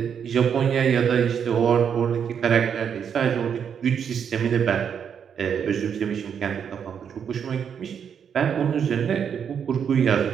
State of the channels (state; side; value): quieter; left; 7.6 dB